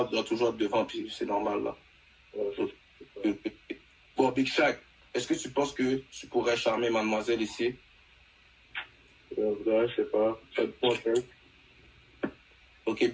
doit toujours être devant, puis c'est normal là. Ouais, Bon, Big Shaq, est-ce que tu penses que tu pourrais charmer mademoiselle ici? je sais pas, ça te prend, hein. Ok,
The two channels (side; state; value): both; identical; correlation 1.00